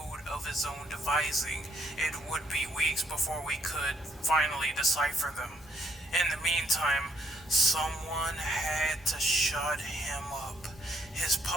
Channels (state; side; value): normal; both; correlation 0.69